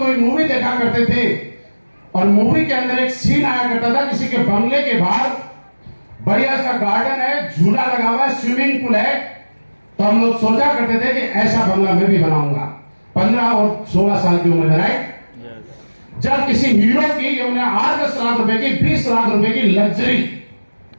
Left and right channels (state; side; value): inverted; both; correlation -1.00